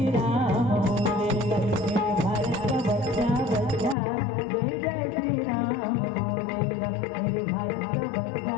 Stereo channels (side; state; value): right; drops out; at 4.0 s